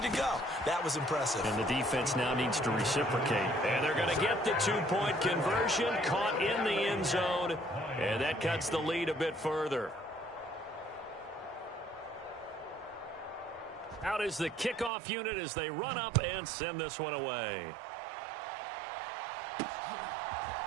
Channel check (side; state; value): left; drops out; at 14.9 s